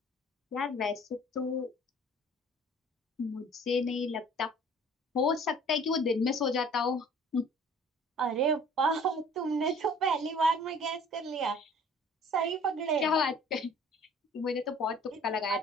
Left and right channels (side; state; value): both; normal; correlation 0.51